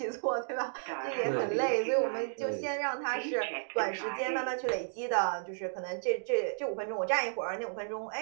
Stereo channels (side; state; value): left; silent; digital silence